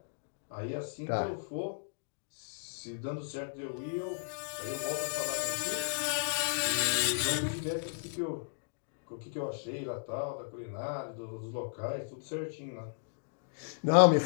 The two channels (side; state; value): right; silent; digital silence